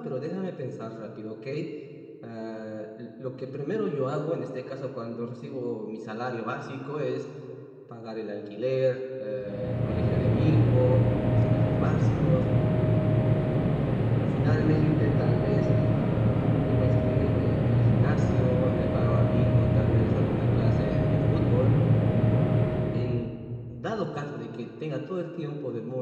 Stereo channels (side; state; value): both; identical; correlation 1.00